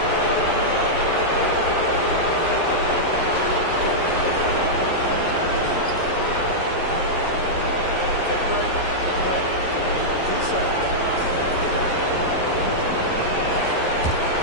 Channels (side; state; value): right; late; 11 ms